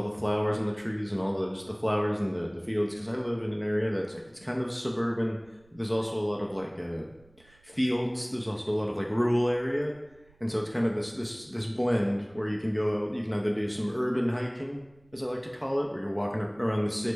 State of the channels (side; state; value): right; noise; rumble, 30 dB below the sound